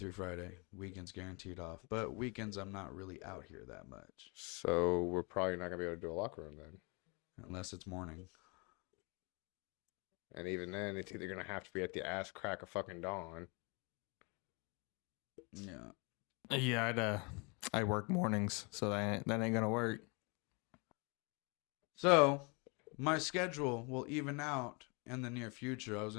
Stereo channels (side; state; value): right; quieter; 31.3 dB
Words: Friday. Weekends guaranteed off. But weekends, I'm not really out here that much. So we're probably not gonna be able to do a locker room then. Unless it's morning. And even then, it's either gonna have to be at the ass crack of fucking dawn. Yeah. yeah, I work mornings, so that ain't gonna work. So, my schedule will even out in the near future. I was